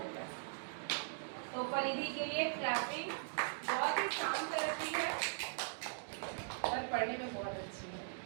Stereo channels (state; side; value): silent; left; digital silence